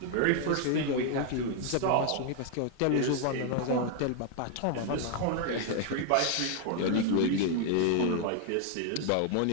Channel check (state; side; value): different; both; correlation 0.00